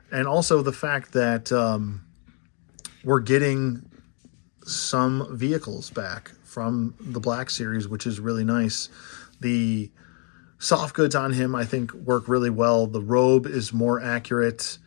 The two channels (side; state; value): right; quieter; 38.2 dB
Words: And also the fact that we're getting some vehicles back from the Black Series, which is really nice. The soft goods on him, I think, work really well. The robe is more accurate.